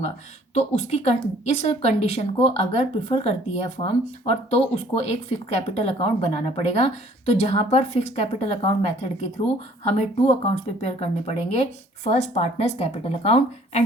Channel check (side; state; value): both; normal; correlation 0.57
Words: तो उसकी इस कंडीशन को अगर प्रिफर करती है फर्म और तो उसको एक फिक्स कैपिटल अकाउंट बनाना पड़ेगा। तो जहाँ पर फिक्स कैपिटल अकाउंट मेथड के थ्रू हमें टू अकाउंट्स प्रिपेयर करने पड़ेंगे, first partners capital account